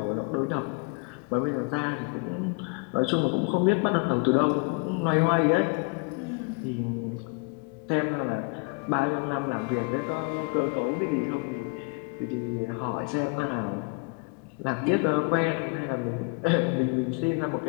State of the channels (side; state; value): right; quieter; 33.6 dB